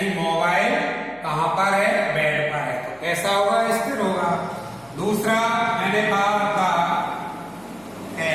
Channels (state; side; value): noise; left; hum, 29 dB below the sound